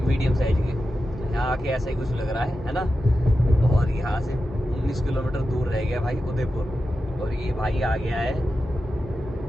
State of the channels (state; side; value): normal; both; correlation 0.91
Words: साइज के। यहाँ आके ऐसा ही कुछ लग रहा है ना। और यहाँ से 19 किलोमीटर दूर रह गया भाई उदयपुर। और ये भाई आ गया है